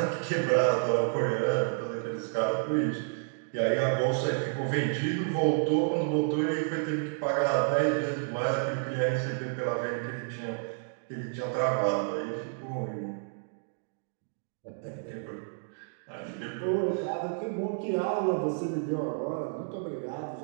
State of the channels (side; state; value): left; silent; digital silence